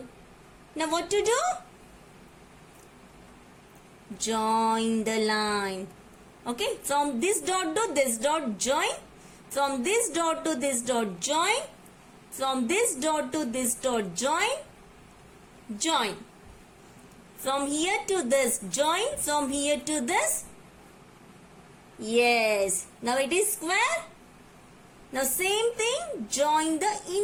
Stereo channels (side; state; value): both; identical; correlation 1.00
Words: Now what to do? join the line. Okay, from this dot to this dot join, from this dot to this dot join, from this dot to this dot join, join. From here to this join, from here to this. Yes, now it is square. Now same thing, join the